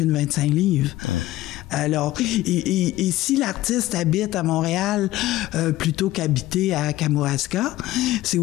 25 livres. Alors, et si l'artiste habite à Montréal plutôt qu'habiter à Kamouraska, c'est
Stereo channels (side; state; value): right; quieter; 16.1 dB